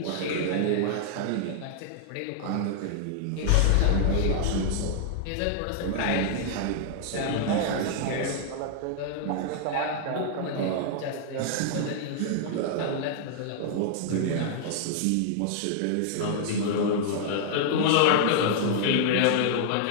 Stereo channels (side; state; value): both; different; correlation -0.01